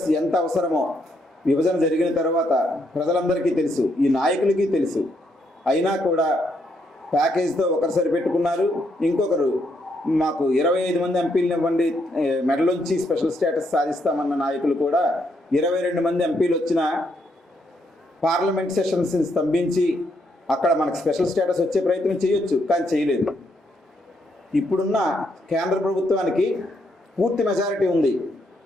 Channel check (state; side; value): normal; both; correlation 0.76